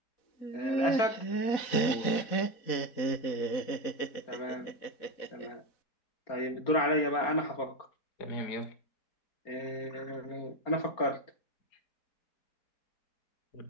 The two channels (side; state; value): right; late; 4.4 ms